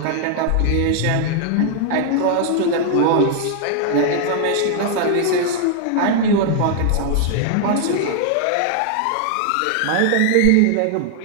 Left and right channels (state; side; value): different; both; correlation 0.00